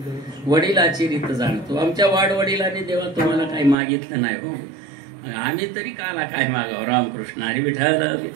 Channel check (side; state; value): left; drops out; at 3.8 s